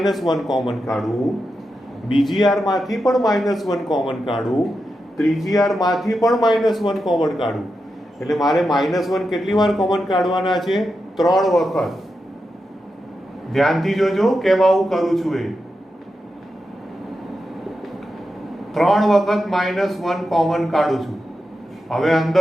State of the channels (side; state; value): both; normal; correlation 0.88